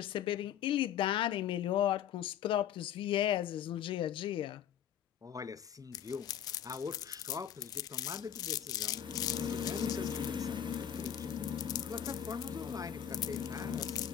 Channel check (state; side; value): quieter; right; 9.7 dB